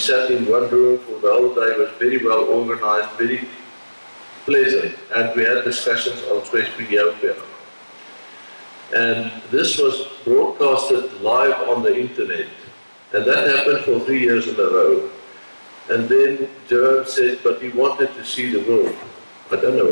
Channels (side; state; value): both; inverted; correlation -1.00